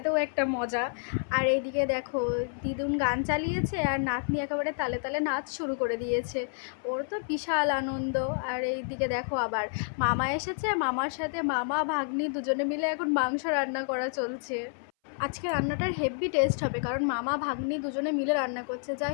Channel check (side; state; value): right; silent; 58 dB below the other